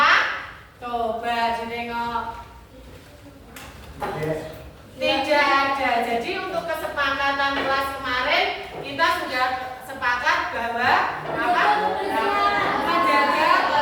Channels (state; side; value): identical; both; correlation 1.00